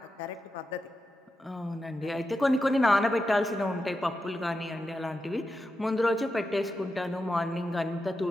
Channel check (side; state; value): both; normal; correlation 0.88